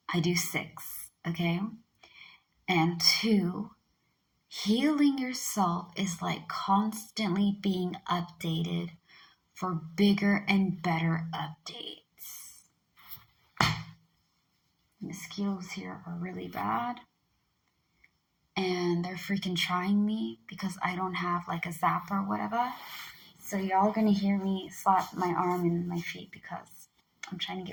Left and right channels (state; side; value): identical; both; correlation 1.00